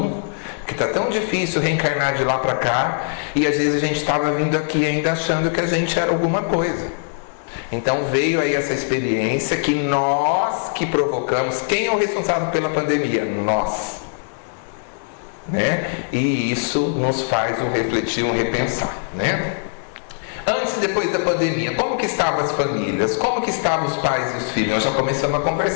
que está tão difícil reencarnar de lá para cá, e às vezes a gente estava vindo aqui ainda achando que a gente era alguma coisa. Então veio aí essa experiência que nós que provocamos. Quem é o responsável pela pandemia? Nós. Né? E isso nos faz um refletir, um repensar, né? Antes e depois da pandemia, como que estavam as famílias? Como que estavam os pais e os filhos? Nós já começamos a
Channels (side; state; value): right; silent; 65 dB below the other